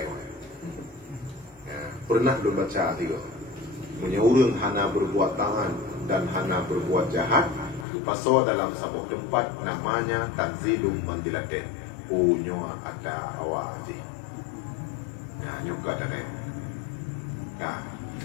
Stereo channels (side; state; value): right; drops out; at 7.9 s